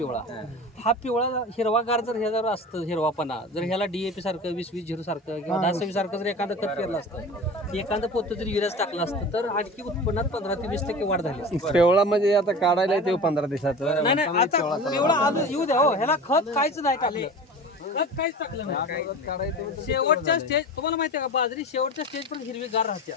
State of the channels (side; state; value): both; normal; correlation 0.35